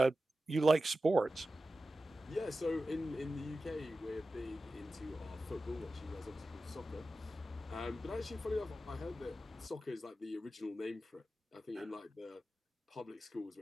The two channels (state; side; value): normal; both; correlation 0.93